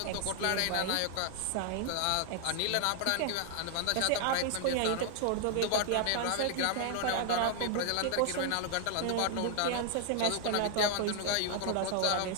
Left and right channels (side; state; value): both; different; correlation 0.00